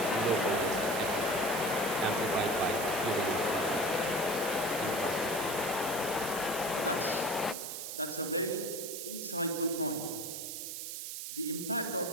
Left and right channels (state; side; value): noise; right; hiss, 6 dB below the sound